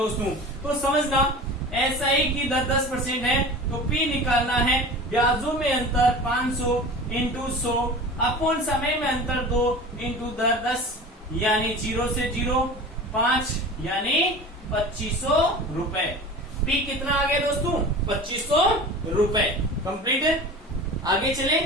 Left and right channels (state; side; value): normal; both; correlation 0.36